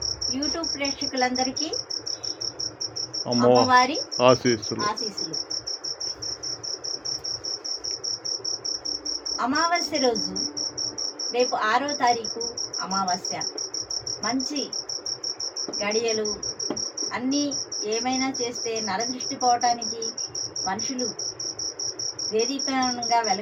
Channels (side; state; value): both; identical; correlation 1.00